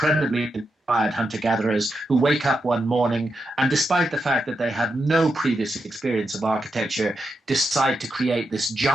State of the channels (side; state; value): both; normal; correlation 0.85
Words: inspired hunter-gatherers who wake up one morning and, despite the fact that they had no previous experience of architecture, decide to create this